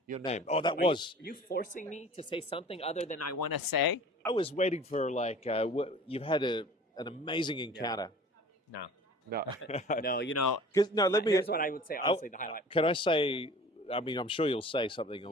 Your name. Oh, that was. Are you forcing me to say something other than I want to say? I was waiting for like you've had an amazing encounter. No. No. No, you know. Here's what I would say. Honestly, the highlight. Can I say? I mean, I'm sure you'll say something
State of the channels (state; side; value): normal; both; correlation 0.45